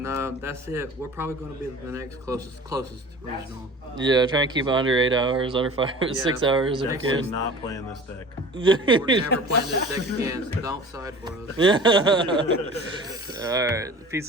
that's it. We're probably going to be the next closest regional. Yeah, try and keep it under 8 hours, under 6 hours if you Definitely can. not playing this deck. We're never playing this deck again, so don't side for us. All right, peace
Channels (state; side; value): normal; both; correlation 0.41